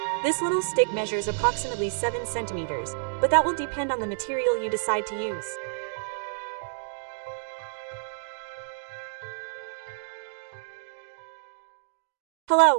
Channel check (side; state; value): left; silent; digital silence